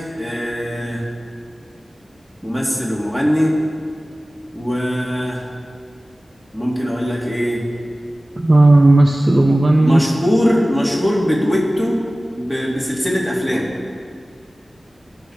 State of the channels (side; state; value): both; normal; correlation 0.97